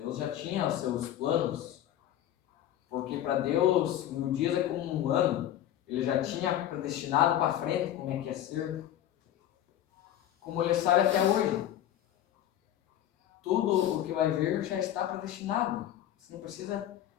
já tinha os seus planos. Porque para Deus, 1000 dias é como um ano. Ele já tinha predestinado para frente como é que ia ser. Como ele sabe até hoje. Tudo o que vai vir já está predestinado. Você não precisa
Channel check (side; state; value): right; quieter; 11.8 dB